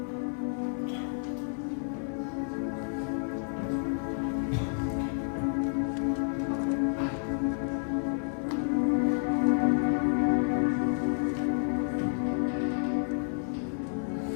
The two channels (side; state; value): right; silent; 58 dB below the other